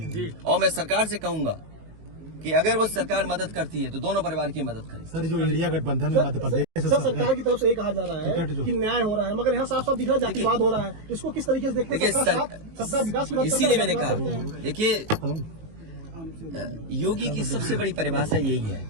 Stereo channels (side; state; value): left; late; 19 ms